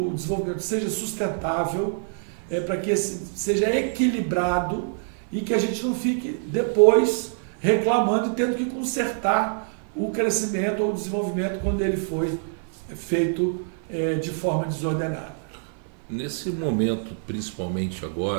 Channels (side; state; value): left; silent; 57 dB below the other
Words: desenvolvimento seja sustentável, para que seja equilibrado e que a gente não fique depois reclamando e tendo que consertar o crescimento ou o desenvolvimento quando ele foi feito de forma desordenada. Nesse momento, principalmente